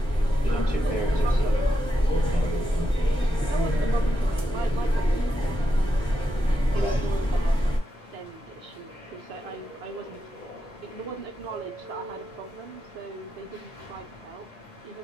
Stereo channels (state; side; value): normal; both; correlation 0.85